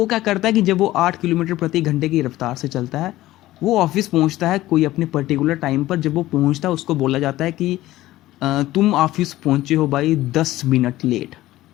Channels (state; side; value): quieter; right; 16.0 dB